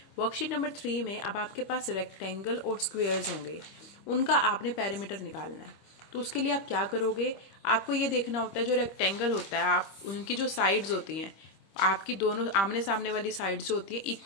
worksheet number 3 में अब आपके पास रेक्टेंगल और स्क्वेयर्स होंगे, उनका आपने पेरीमीटर निकालना है। तो उसके लिए आप क्या करोगे, आपको ये देखना होता है जो रेक्टेंगल होता है, आप उनकी जो साइड्स होती हैं, आपकी दोनों आमने सामने वाली साइड जो होती है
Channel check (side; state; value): right; late; 25 ms